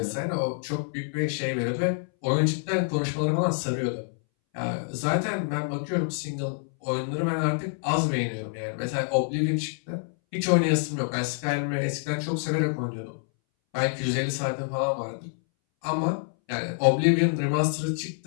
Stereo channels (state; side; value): silent; right; 60 dB below the other